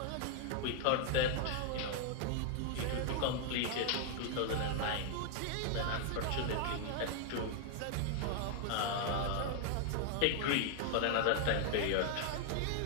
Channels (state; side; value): different; both; correlation 0.00